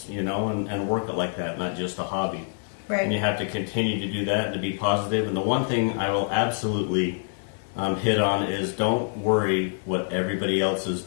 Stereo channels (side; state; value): right; silent; digital silence